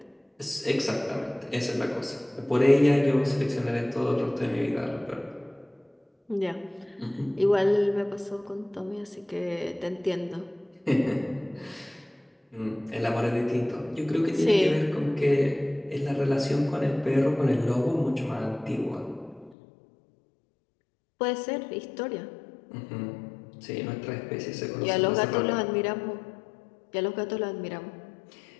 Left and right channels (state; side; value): drops out; right; at 19.6 s